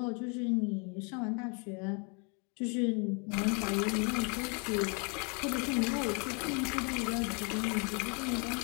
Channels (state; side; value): quieter; right; 35.1 dB